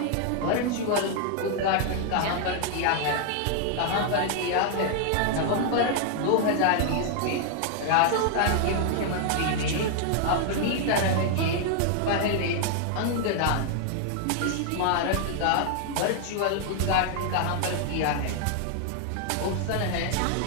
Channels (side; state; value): both; different; correlation 0.00